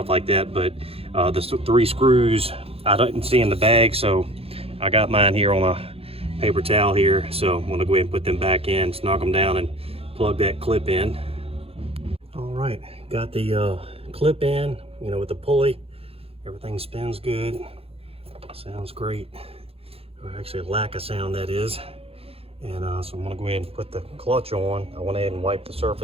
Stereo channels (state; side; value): late; left; 0.28 ms